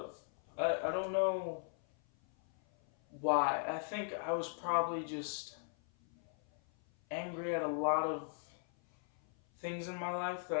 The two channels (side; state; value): right; silent; 52 dB below the other